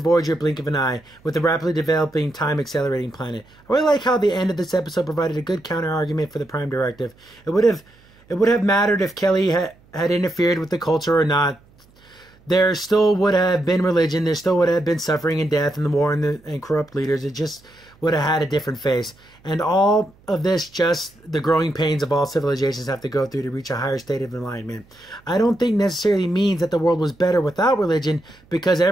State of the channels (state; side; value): noise; right; hum, 30 dB below the sound